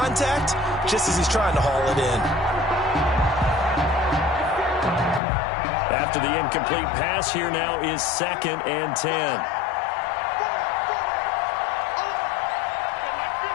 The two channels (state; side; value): drops out; right; at 5.2 s